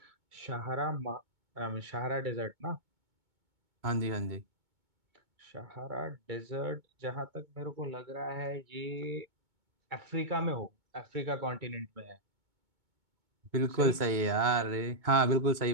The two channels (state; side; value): late; left; 2.2 ms